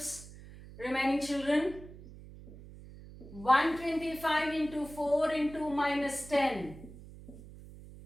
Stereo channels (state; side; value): noise; right; hum, 17 dB below the sound